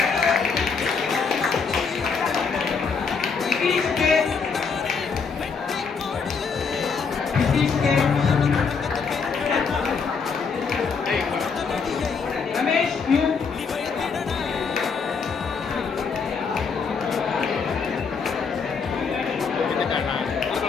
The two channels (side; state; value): right; quieter; 5.4 dB